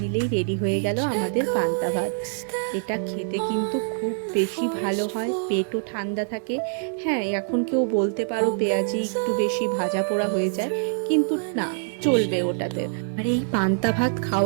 নিলেই রেডি হয়ে গেল আমাদের পান্তা ভাত। এটা খেতে কিন্তু খুব বেশি ভালো হয়, পেটও ঠান্ডা থাকে। হ্যাঁ, এখন কেউ বলতে পারো পেঁয়াজি একটু বেশি ভাজা পোড়া হয়ে যায়, কিন্তু না, চলবে ওটাতে। আর এই পান্তা ভাত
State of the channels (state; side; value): silent; left; 62 dB below the other